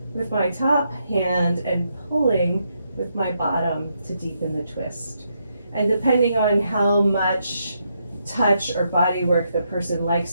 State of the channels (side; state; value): both; inverted; correlation -0.79